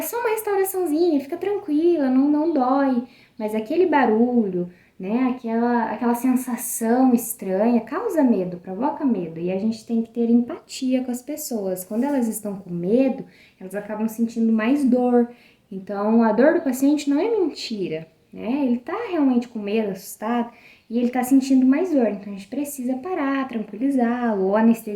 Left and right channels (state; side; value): identical; both; correlation 1.00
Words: só uma restauraçãozinha, fica tranquila, não dói, mas aquele barulho, né? Aquela sensação estranha causa medo, provoca medo. E a gente tem que ter empatia com as pessoas. Quando elas estão com medo, elas acabam sentindo mais dor. Então, a dor do paciente não é mentira, né? Ele tá realmente com medo, assustado, e ele tá sentindo mais dor. Então, a gente precisa parar, tranquilizá-lo, ou